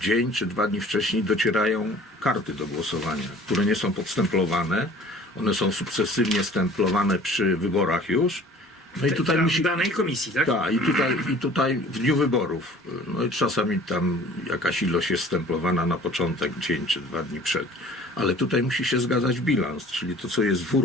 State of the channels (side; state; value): both; normal; correlation 0.49